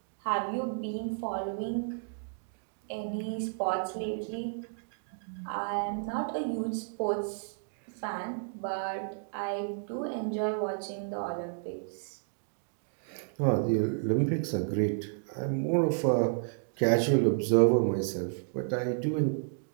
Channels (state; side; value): silent; left; digital silence